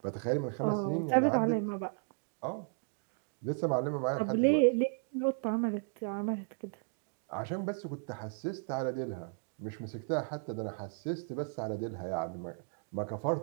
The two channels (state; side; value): silent; left; 55 dB below the other